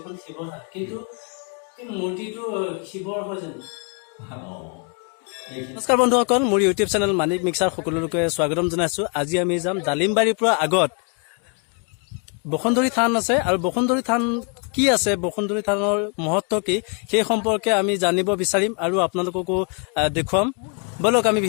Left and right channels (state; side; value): quieter; right; 37.5 dB